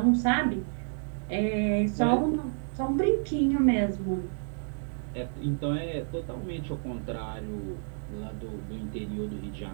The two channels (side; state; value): left; silent; digital silence